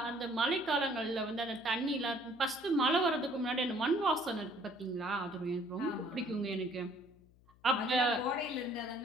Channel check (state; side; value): noise; left; hum, 28 dB below the sound